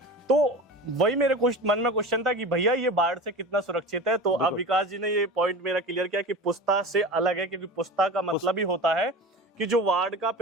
तो वही मेरे मन में क्वेश्चन था कि भैया ये बाढ़ से कितना सुरक्षित है। तो अब विकास जी ने ये पॉइंट मेरा क्लियर किया कि पुस्ता से अलग है, क्योंकि पुस्ता का मतलब ही होता है कि जो वार्ड का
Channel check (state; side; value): normal; both; correlation 0.32